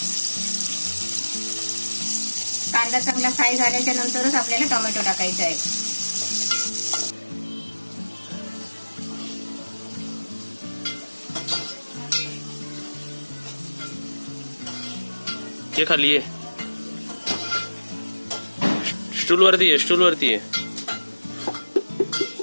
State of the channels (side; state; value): both; inverted; correlation -1.00